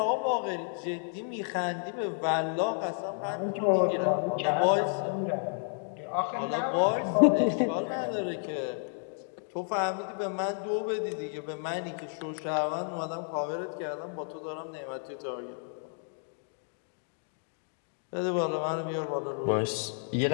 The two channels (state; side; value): silent; right; 57 dB below the other